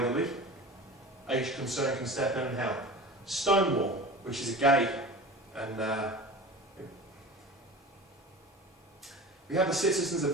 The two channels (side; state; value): both; normal; correlation 0.35